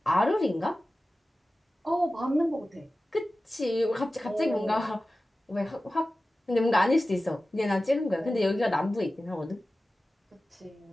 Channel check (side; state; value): both; normal; correlation 0.95